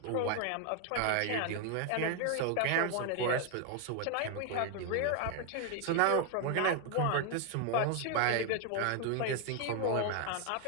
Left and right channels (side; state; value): both; different; correlation 0.01